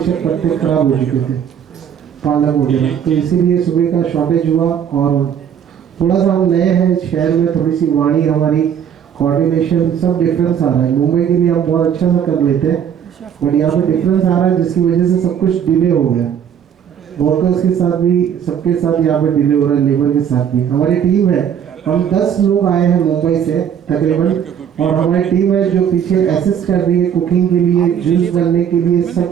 पत्ते खराब हो चुके थे, पालक वगैरह, तो इसीलिए सुबह का शॉर्टेज हुआ। और थोड़ा सा हम नए हैं शहर में, थोड़ी सी वाणी हमारी कोऑर्डिनेशन सब डिफरेंस आ रहा है। मुंबई के लिए हम बहुत अच्छा सा कर लेते हैं, बट यहाँ पे डिफरेंस आ रहा है, जिसकी वजह से सब कुछ डिले हो गया। वर्कर्स के साथ भी, सबके साथ यहाँ पे डिले हो रहा है, लेबर के साथ भी। हमारी टीम है, हम 10 लोग आए हैं मुंबई से तकरीबन, और हमारी टीम है जो पीछे असिस्ट कर रही है कुकिंग के लिए, जूस बनने के लिए,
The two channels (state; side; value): quieter; left; 8.6 dB